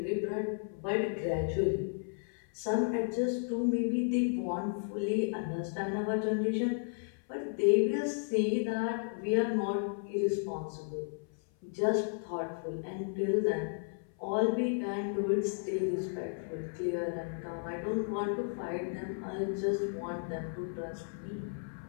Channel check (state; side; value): silent; right; 55 dB below the other